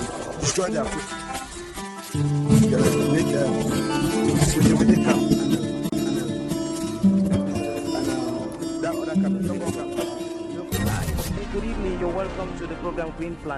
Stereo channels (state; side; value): identical; both; correlation 1.00